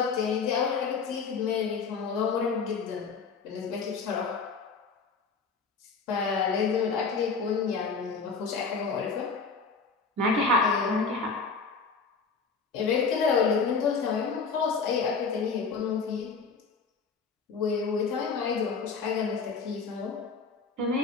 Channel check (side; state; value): right; quieter; 5.0 dB